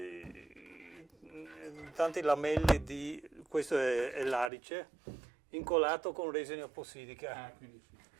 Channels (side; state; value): left; drops out; at 4.5 s